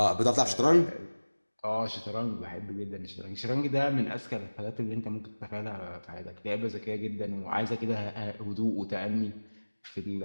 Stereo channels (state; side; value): inverted; both; correlation -1.00